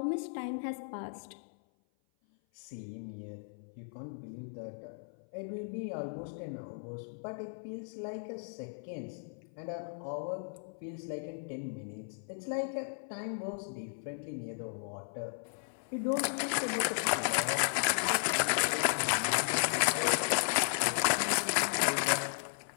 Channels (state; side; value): silent; right; 54 dB below the other